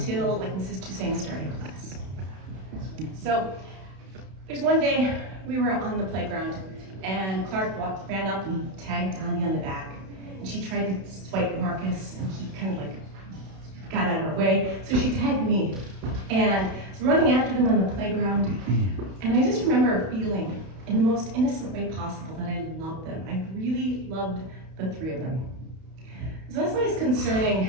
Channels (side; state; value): left; late; 32 ms